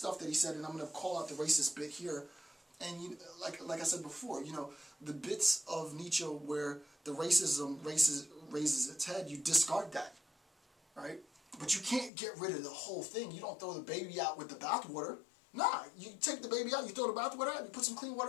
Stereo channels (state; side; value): drops out; right; at 12.1 s